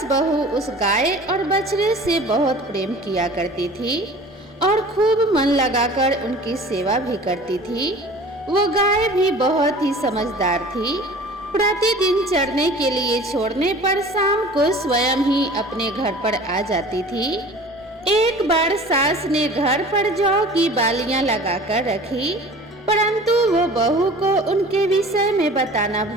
बहू उस गाय और बछड़े से बहुत प्रेम किया करती थी और खूब मन लगाकर उनकी सेवा भी करती थी। वो गाय भी बहुत ही समझदार थी। प्रतिदिन चरने के लिए छोड़ने पर शाम को स्वयं ही अपने घर पर आ जाती थी। एक बार सास ने घर पर जौ की बालियां लगाकर रखी, परंतु वो बहू को उनके विषय में बताना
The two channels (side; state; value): both; normal; correlation 0.43